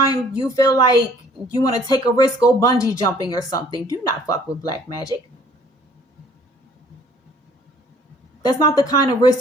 you feel like you want to take a risk, go bungee jumping or something. Do not fuck with black magic. That's not the kind of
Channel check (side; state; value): both; normal; correlation 0.56